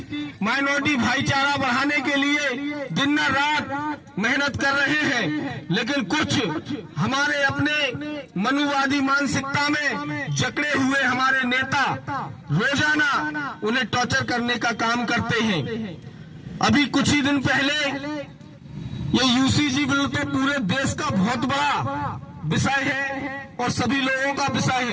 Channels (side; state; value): both; identical; correlation 1.00